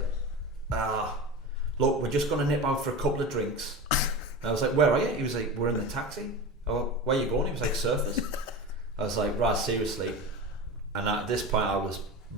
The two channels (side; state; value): both; normal; correlation 0.28